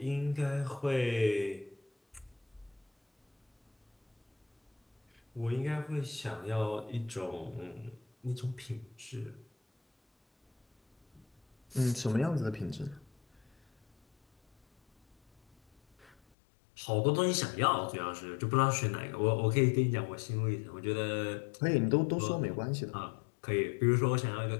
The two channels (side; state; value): right; drops out; at 16.2 s